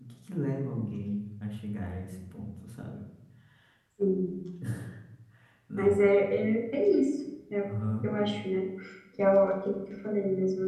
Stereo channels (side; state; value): both; identical; correlation 1.00